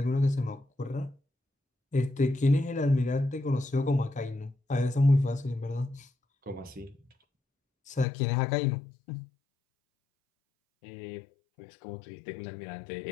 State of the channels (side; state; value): right; drops out; at 8.1 s